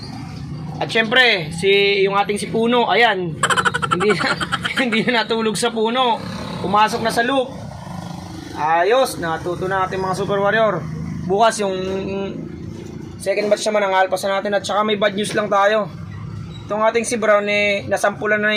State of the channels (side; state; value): both; identical; correlation 1.00